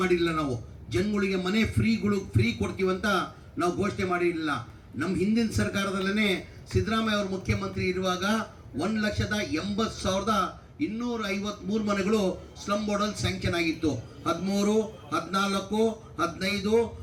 ಮಾಡಿರಲಿಲ್ಲ. ನಾವು ಜನಗಳಿಗೆ ಮನೆ ಫ್ರೀ ಕೊಡ್ತೀವಂತ ನಾವು ಘೋಷಣೆ ಮಾಡಿರಲಿಲ್ಲ. ನಮ್ಮ ಹಿಂದಿನ ಸರ್ಕಾರದಲ್ಲೇ ಸಿದ್ದರಾಮಯ್ಯ ಅವರು ಮುಖ್ಯಮಂತ್ರಿ ಇರುವಾಗ 1,80,253 ಮನೆಗಳು ಸ್ಲಮ್ ಬೋರ್ಡಲ್ಲಿ ಸ್ಯಾಂಕ್ಷನ್ ಆಗಿತ್ತು. 13, 14, 15,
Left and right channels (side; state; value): both; identical; correlation 1.00